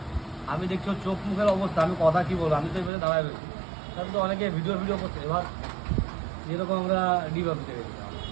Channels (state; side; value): drops out; left; at 2.9 s